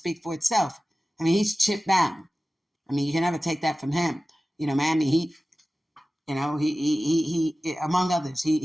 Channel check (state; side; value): normal; both; correlation 0.96